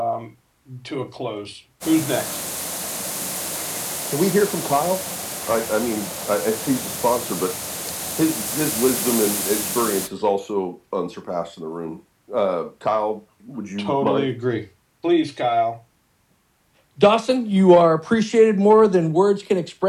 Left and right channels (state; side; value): identical; both; correlation 1.00